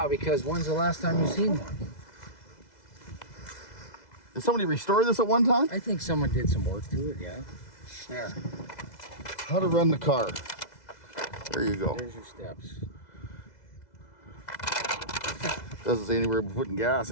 because when's the last time you've seen one? Did somebody restore this at one time? I think someone did some work to it, yeah. There. How to run the car. There you go. There's your steps. Doesn't say anywhere about putting gas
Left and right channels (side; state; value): right; late; 2.0 ms